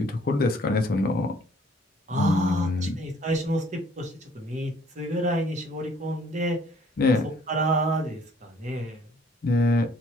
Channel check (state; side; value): normal; both; correlation 0.60